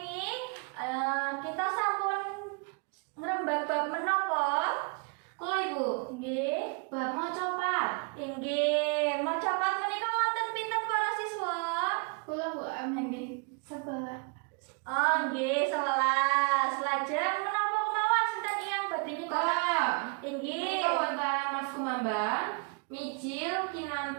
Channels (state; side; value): quieter; left; 35.0 dB